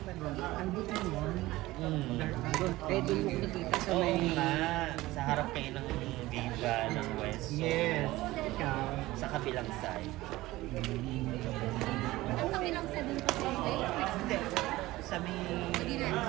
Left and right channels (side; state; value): left; quieter; 18.2 dB